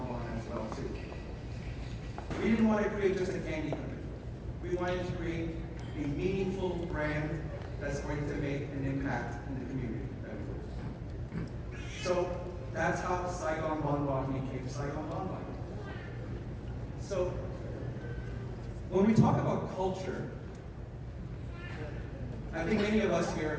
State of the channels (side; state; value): both; identical; correlation 1.00